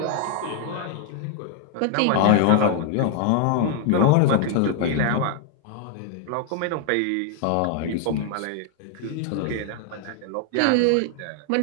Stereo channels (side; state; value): both; different; correlation 0.00